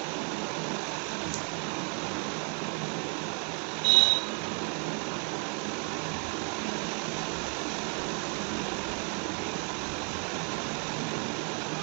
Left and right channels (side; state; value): left; quieter; 37.6 dB